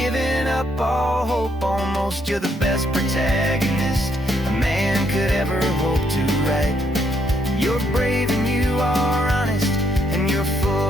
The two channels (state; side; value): normal; both; correlation 0.73